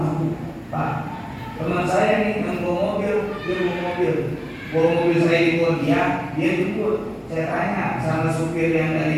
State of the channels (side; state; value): both; identical; correlation 1.00